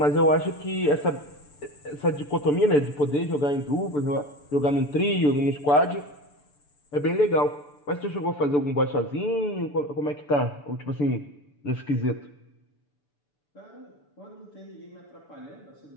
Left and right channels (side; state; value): right; late; 6.9 ms